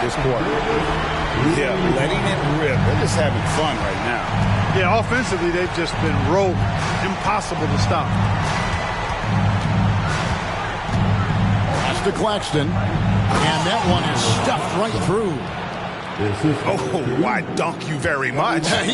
this quarter. Yeah, letting it rip. They're just having fun right now. Yeah, offensively, they've just been rolling. Impossible to stop. Pass to Claxton. And that one is stuffed right through. Oh, why dunk you very much?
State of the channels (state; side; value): identical; both; correlation 1.00